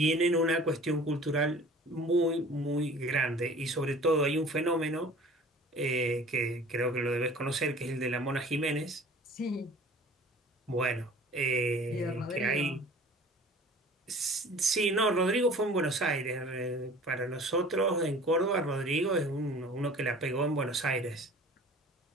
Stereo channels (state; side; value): normal; both; correlation 0.46